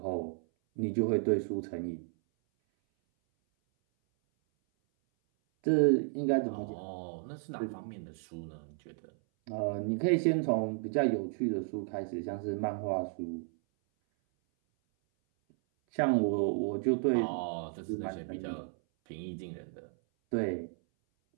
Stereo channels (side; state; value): left; silent; 56 dB below the other